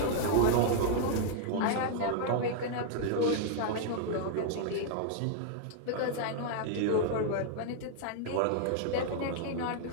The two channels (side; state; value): both; different; correlation -0.01